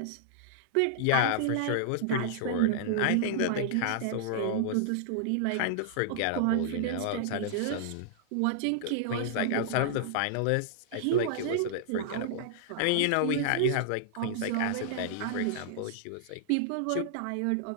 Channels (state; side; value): different; both; correlation -0.01